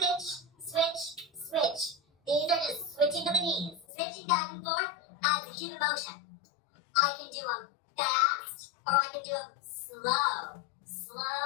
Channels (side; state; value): right; drops out; at 3.9 s